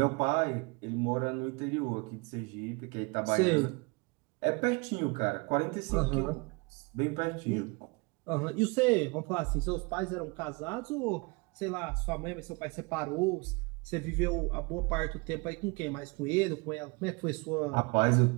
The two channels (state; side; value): quieter; left; 28.7 dB